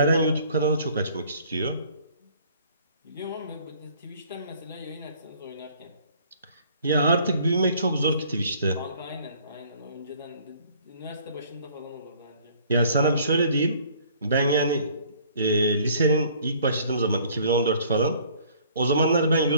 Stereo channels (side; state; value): both; inverted; correlation -0.57